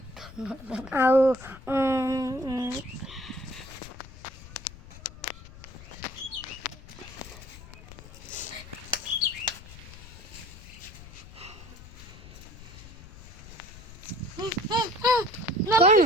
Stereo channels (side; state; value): left; noise; rumble, 16 dB below the sound